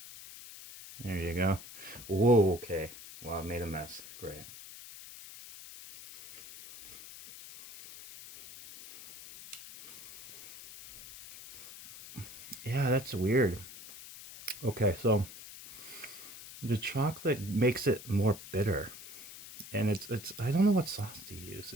There you go. Whoa, okay. Well, I made a mess. Great. Yeah, that's weird. Okay, so the chocolate makes it more bitter. And it's I don't know what sauce to use.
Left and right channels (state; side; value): noise; left; hiss, 15 dB below the sound